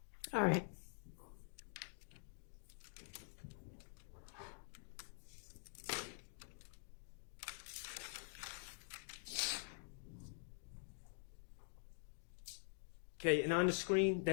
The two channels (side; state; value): right; silent; digital silence